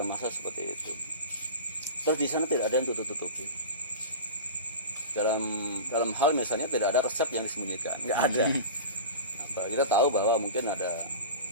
massa seperti itu. Terus di sana tidak ada yang tutup-tutupi. Dalam hal misalnya tidak ada resep yang disembunyikan, nggak ada. Kita tahu bahwa mungkin ada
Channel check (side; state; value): both; inverted; correlation -0.30